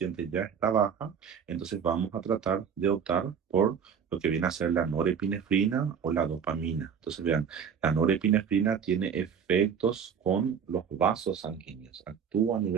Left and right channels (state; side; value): quieter; left; 7.3 dB